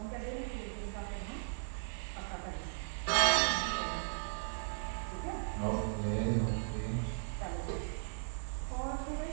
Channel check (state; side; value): silent; left; 53 dB below the other